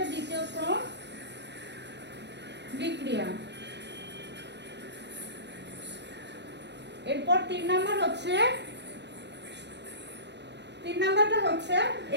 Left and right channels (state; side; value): late; left; 0.50 ms